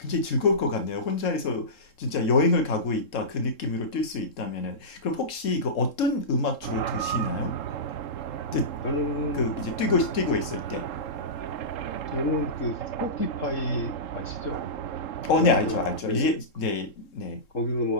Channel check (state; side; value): late; right; 3.7 ms